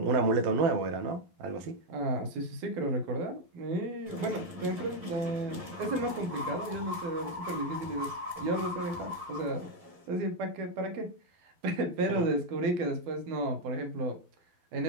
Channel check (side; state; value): left; late; 12 ms